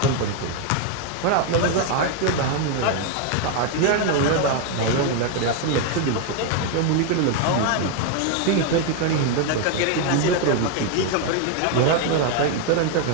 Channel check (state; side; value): different; both; correlation 0.01